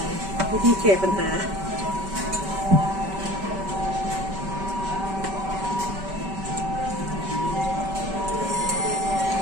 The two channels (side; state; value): left; late; 5.2 ms